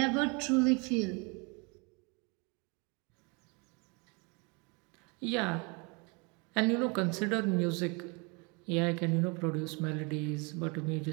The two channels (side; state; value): left; quieter; 31.3 dB